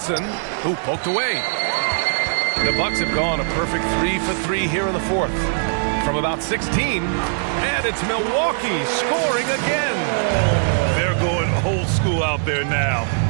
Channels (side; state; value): left; silent; digital silence